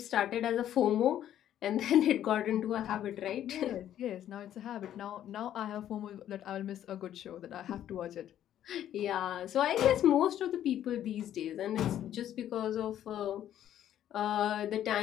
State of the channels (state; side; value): quieter; right; 11.2 dB